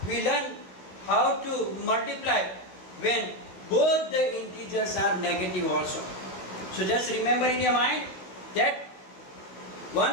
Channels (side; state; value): right; late; 16 ms